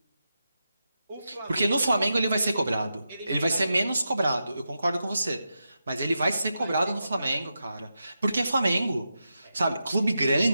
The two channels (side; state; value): both; inverted; correlation -0.88